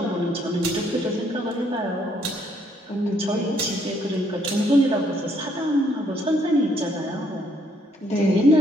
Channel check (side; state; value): both; normal; correlation 0.69